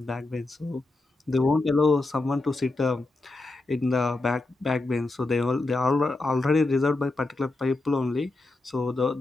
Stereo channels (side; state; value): right; quieter; 3.1 dB